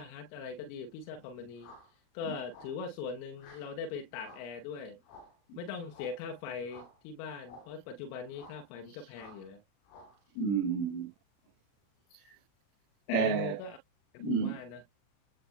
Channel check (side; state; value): right; late; 40 ms